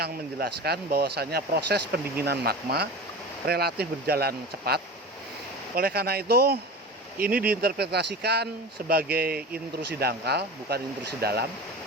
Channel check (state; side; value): normal; both; correlation 0.31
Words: menjelaskan bahwasanya proses pendinginan magma relatif berjalan cepat. Oleh karena itu, ini diinterpretasikan sebagai intrusi dangkal, bukan intrusi dalam,